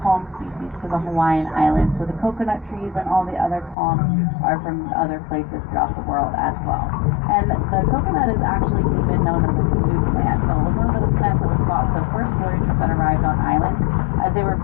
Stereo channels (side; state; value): right; drops out; at 3.8 s